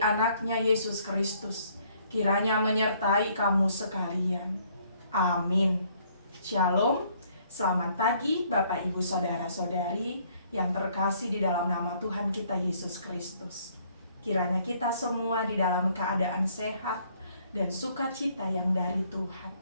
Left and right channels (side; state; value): both; inverted; correlation -0.64